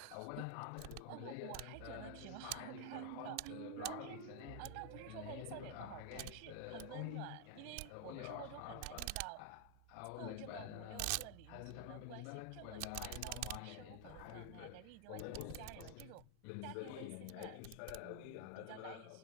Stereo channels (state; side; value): different; both; correlation 0.00